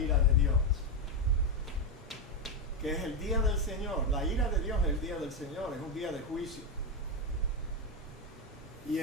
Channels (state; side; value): normal; both; correlation 0.08